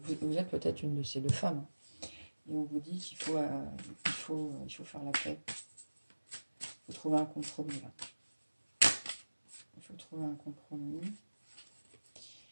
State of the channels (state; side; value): inverted; both; correlation -1.00